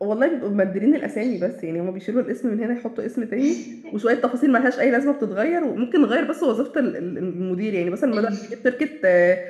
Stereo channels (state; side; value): identical; both; correlation 1.00